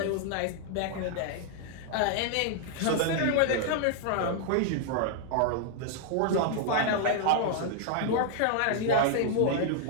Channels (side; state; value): both; different; correlation 0.00